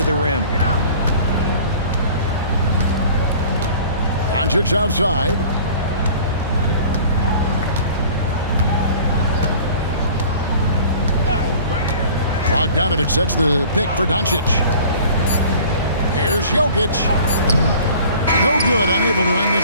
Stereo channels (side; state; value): both; inverted; correlation -0.46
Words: the rim. Doncic outside. Bogdanovich sets the pick for Doncic. Here's Jokic. No good, unable to end